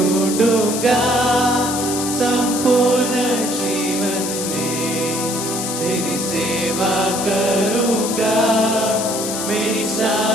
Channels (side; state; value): left; noise; hiss, 4 dB below the sound